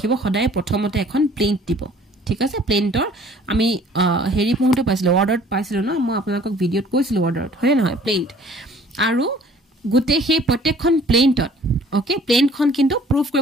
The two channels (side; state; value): both; normal; correlation 0.54